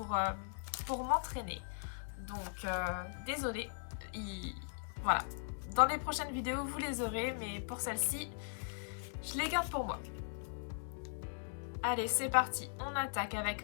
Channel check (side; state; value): right; silent; digital silence